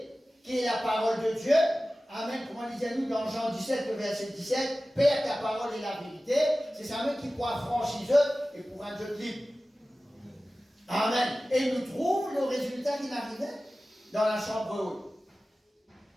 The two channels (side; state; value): both; normal; correlation 0.96